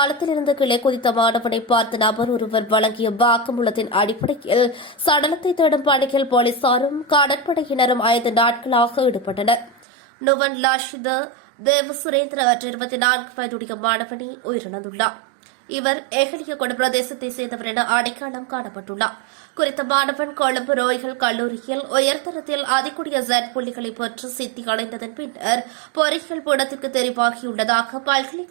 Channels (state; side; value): drops out; left; at 9.9 s